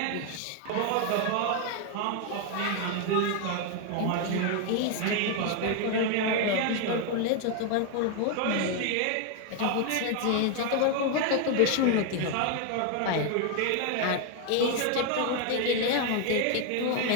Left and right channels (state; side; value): different; both; correlation 0.01